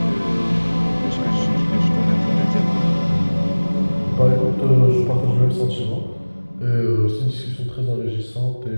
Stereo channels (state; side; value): inverted; both; correlation -1.00